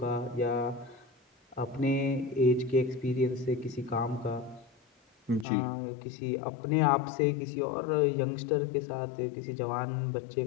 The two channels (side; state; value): right; drops out; at 5.5 s